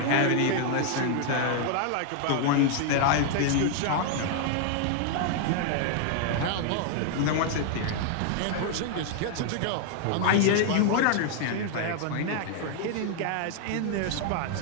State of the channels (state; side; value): different; both; correlation 0.00